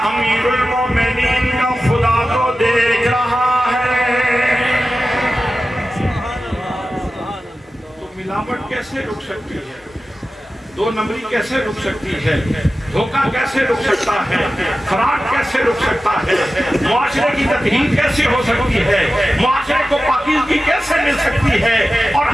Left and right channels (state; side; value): normal; both; correlation 0.94